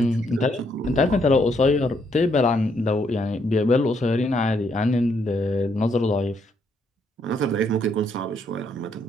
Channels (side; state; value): both; normal; correlation 0.73